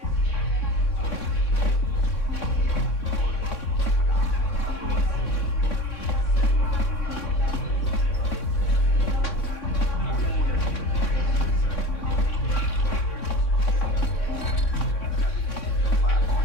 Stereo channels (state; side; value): late; right; 3.6 ms